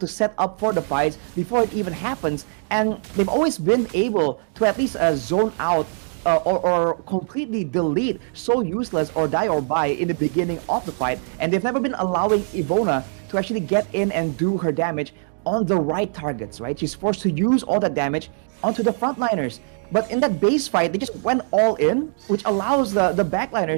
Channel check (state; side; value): silent; left; digital silence